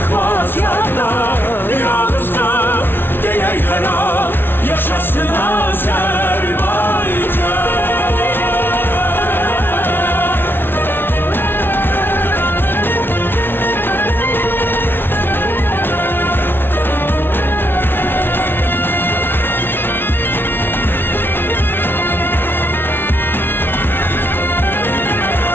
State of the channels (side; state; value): right; late; 0.11 ms